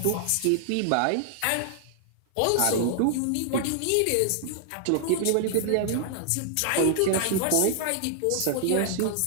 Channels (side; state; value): both; different; correlation 0.00